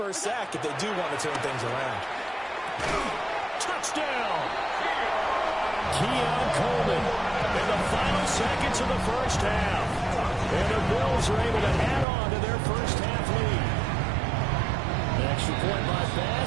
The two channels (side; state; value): left; drops out; at 12.1 s